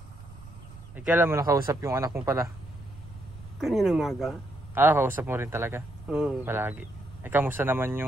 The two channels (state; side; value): noise; right; rumble, 17 dB below the sound